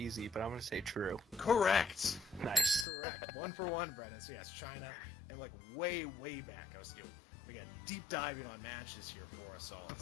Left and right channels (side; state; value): right; drops out; at 2.9 s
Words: but I'm going to say true. Correct. Nice. Correct. 1 for 1, Brennan. So yes, China, and like way back, I was doing, again, deep diving on matches here for us all.